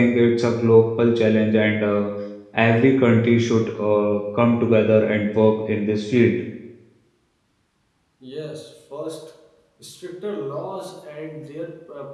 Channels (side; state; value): both; identical; correlation 1.00